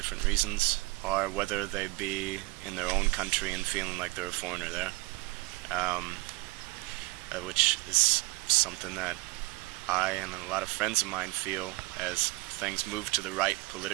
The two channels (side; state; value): left; quieter; 23.5 dB